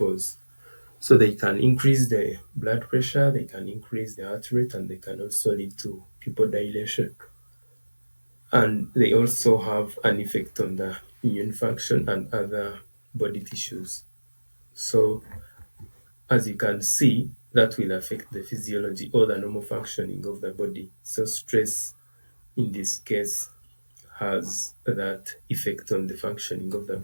So they can increase the blood pressure, they can increase the heart rate, and they can also lead to pupil dilation. And they also have an effect on the immune function and other body tissues. So as you can see, that will affect the physiology or the normal functioning of the body. So stress in this case has that effect on the functioning of the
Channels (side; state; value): both; inverted; correlation -1.00